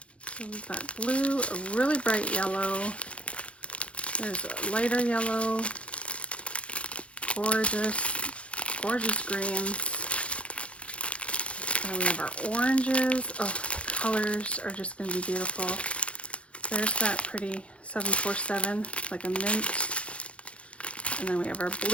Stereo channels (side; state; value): right; late; 0.061 ms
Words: So we've got blue, a really bright yellow. There's a lighter yellow, gorgeous greens. And we have our oranges. Oh, the colors are just going to be beautiful. There's that pretty 747, like a mint. And then we have our